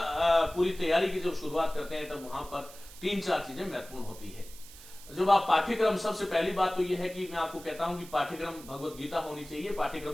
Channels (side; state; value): right; noise; hiss, 18 dB below the sound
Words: पूरी तैयारी की जब शुरुआत करते हैं तब वहां पर 3-4 चीजें महत्वपूर्ण होती है। जब आप पाठ्यक्रम, सबसे पहली बात तो यह है कि मैं आपको कहता हूं कि पाठ्यक्रम भगवत गीता होनी चाहिए,